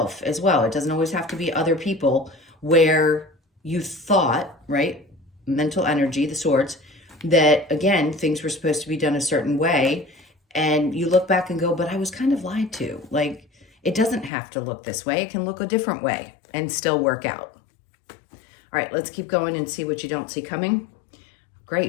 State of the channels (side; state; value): right; drops out; at 14.3 s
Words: as well. It doesn't always have to be other people, where you thought, right, mental energy, the swords, that again, things were supposed to be done a certain way. And you look back and go, but I was kind of lied to. Like, it doesn't have to look this way. It can look a different way and still work out. All right, let's keep going and see what you don't see coming.